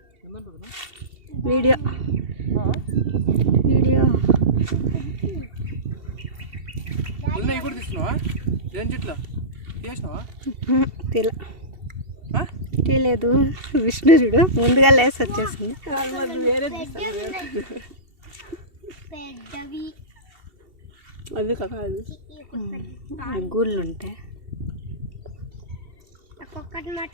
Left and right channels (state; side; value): late; left; 2.7 ms